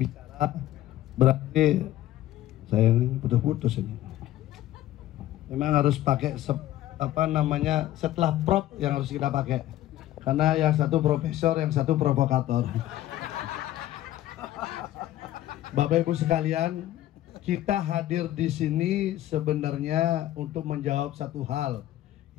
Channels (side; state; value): right; quieter; 13.9 dB